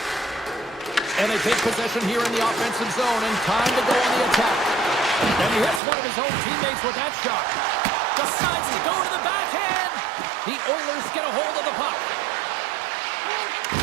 And they take possession here in the offensive zone, and time to go on the attack. And he hits one of his own teammates with that shot. Decides to go to the backhand. The Oilers get a hold of the puck.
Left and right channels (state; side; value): drops out; left; at 5.8 s